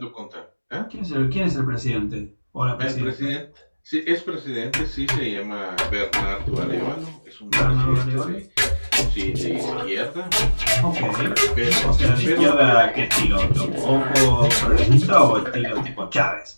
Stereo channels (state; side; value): inverted; both; correlation -1.00